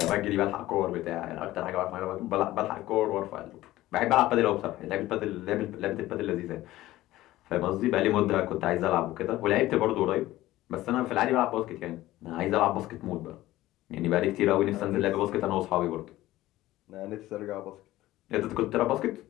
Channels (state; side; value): quieter; right; 16.2 dB